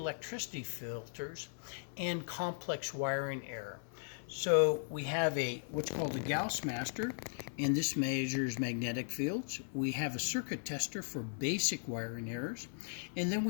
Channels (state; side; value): silent; right; 53 dB below the other